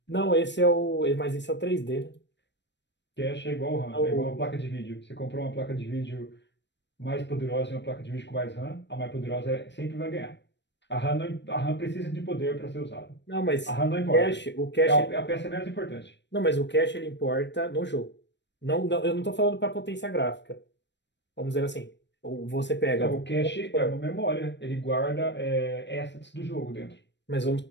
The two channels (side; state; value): right; late; 0.52 ms